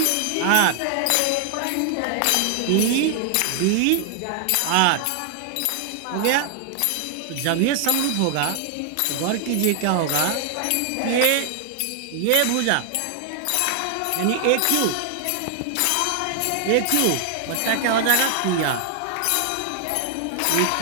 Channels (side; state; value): both; different; correlation 0.00